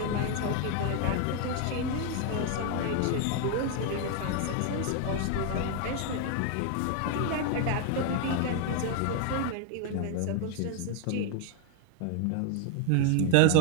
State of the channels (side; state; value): both; different; correlation 0.00